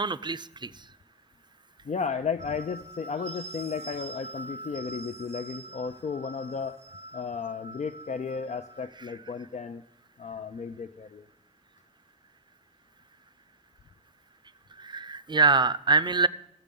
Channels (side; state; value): both; normal; correlation -0.16